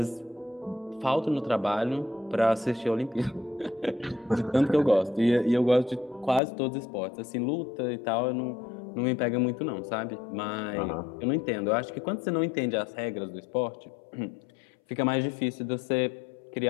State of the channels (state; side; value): drops out; right; at 6.4 s